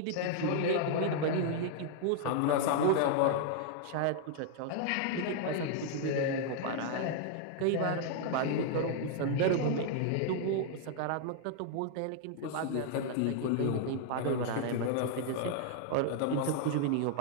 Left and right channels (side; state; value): both; different; correlation 0.00